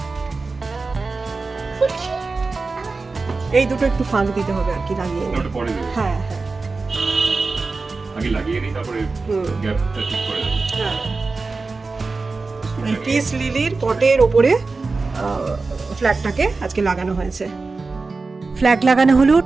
খুলছি। এই দুটো একটু ফাঁক দিতে হবে আর কি, লাগিয়ে নে। ওটা পরে দেবো। হ্যাঁ হ্যাঁ আগে লাগিয়ে নিই, তারপরে গ্যাপটা ঠিক করে দেবো। হ্যাঁ। এই পিস লিলির পটের ওপরে ফ্ল্যাগটাকে আজকে লাগানো হয়েছে। ফ্ল্যাগ লাগানো হলো,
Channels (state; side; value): quieter; left; 3.9 dB